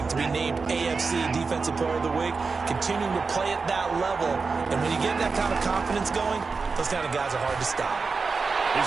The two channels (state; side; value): quieter; left; 4.6 dB